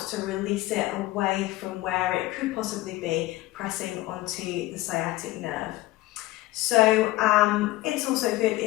to release it away from where it could possibly be pressing onto the sciatic nerve. So it's also good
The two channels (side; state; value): right; quieter; 17.8 dB